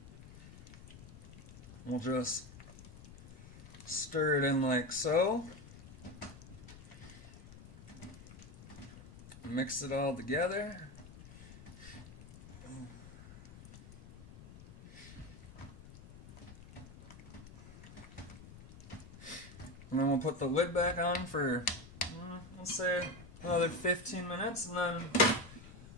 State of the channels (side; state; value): left; noise; rumble, 17 dB below the sound